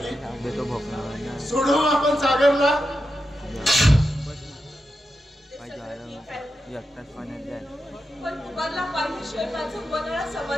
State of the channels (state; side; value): normal; both; correlation 0.88